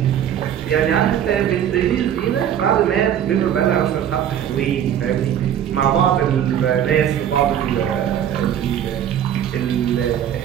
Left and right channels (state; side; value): quieter; left; 9.9 dB